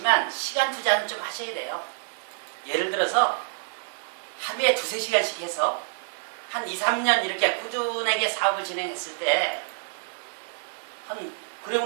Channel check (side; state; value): left; silent; digital silence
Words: 시간 투자는 좀 하셔야 돼요. 예를 들어서 하루에 2~3시간씩 해서 한 2~3년 이렇게 꾸준하게 사업을 진행했을 때 그러고